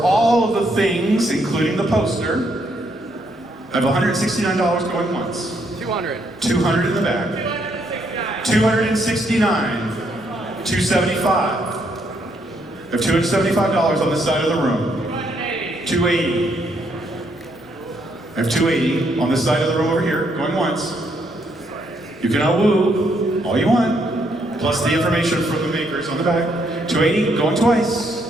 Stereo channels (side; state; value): both; normal; correlation 0.73